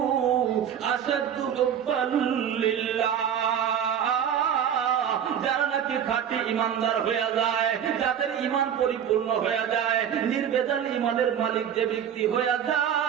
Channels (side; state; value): left; quieter; 8.8 dB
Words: আশাদ্দু হুব্বান লিল্লাহ। খাঁটি ইমানদার হয়ে যায়, যাদের ইমান পরিপূর্ণ হয়ে যায়, নির্বেজাল ইমানের মালিক যে ব্যক্তি হয়ে